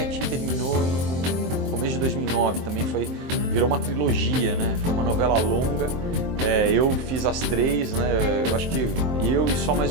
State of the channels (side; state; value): left; late; 23 ms